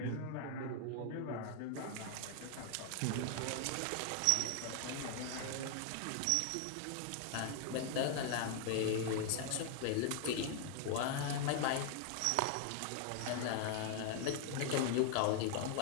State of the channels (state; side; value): different; both; correlation 0.00